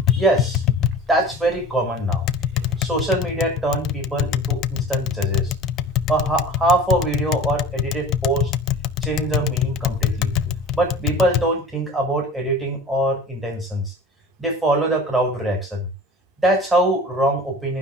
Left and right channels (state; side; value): normal; both; correlation 0.39